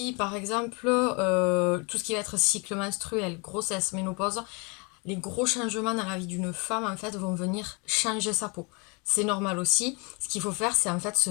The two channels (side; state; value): right; quieter; 30.9 dB